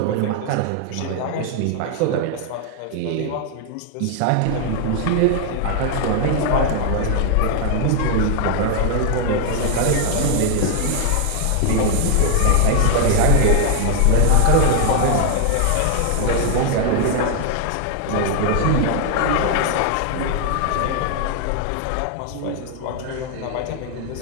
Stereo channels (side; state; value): both; different; correlation 0.00